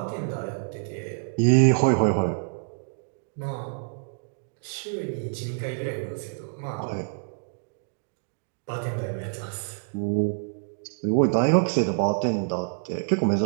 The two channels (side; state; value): left; silent; digital silence